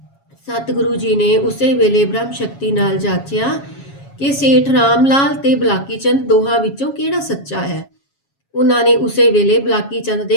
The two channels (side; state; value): right; late; 7.3 ms